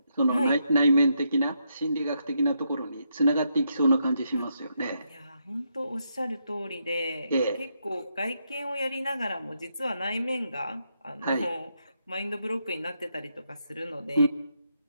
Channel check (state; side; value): inverted; both; correlation -0.80